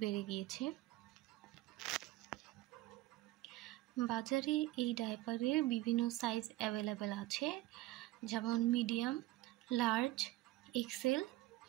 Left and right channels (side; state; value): left; quieter; 17.1 dB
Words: বেড়ে গিয়েছে। বাজারে এই ডায়াপারের বিভিন্ন সাইজ অ্যাভেলেবেল আছে, যেমন medium, large, XL,